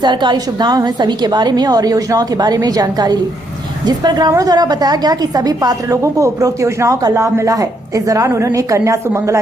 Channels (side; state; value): both; normal; correlation 0.74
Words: सुविधाएं हैं सभी के बारे में और योजनाओं के बारे में जानकारी ली, जिस पर ग्रामीणों द्वारा बताया गया कि सभी पात्र लोगों को उपरोक्त योजनाओं का लाभ मिला है। इस दौरान उन्होंने कन्या सुमंगला